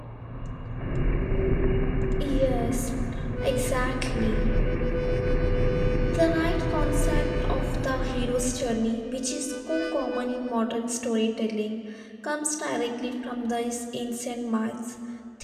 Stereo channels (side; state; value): both; identical; correlation 1.00